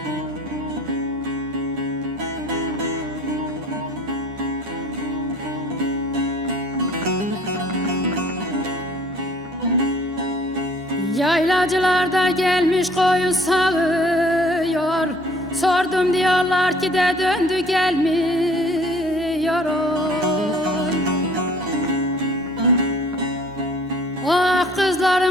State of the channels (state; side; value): normal; both; correlation 0.54